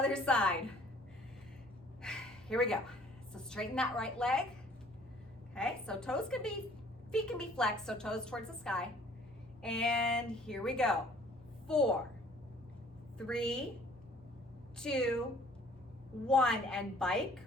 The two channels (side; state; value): both; normal; correlation 0.56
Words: side. Here we go. So straighten that right leg. Okay, so feet can be flexed, so toes towards the sky. And here we go. 4, 3, 2, 1, and bike.